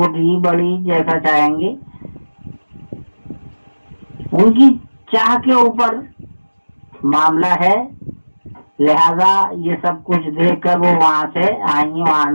بڑی جیسا چاہیں گے، ان کی چاہ کے اوپر معاملہ ہے۔ لہذا یہ سب کچھ دیکھ کر وہ وہاں سے آئی، وہاں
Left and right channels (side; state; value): both; inverted; correlation -1.00